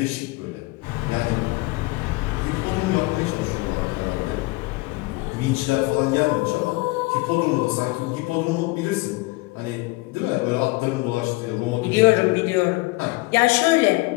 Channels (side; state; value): right; quieter; 23.4 dB